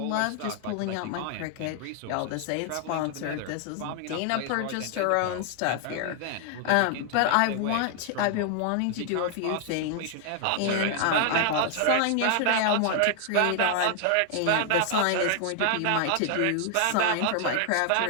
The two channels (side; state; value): both; different; correlation 0.00